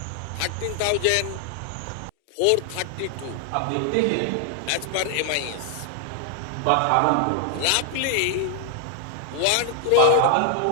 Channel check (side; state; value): both; different; correlation 0.00